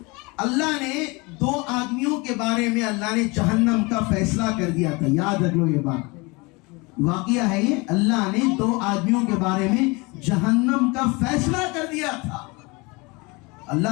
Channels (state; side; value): quieter; right; 26.4 dB